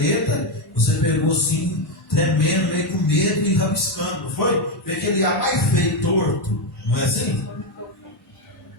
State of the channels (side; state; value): both; normal; correlation 0.07